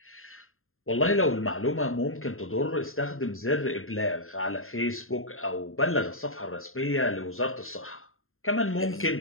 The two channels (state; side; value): late; right; 0.61 ms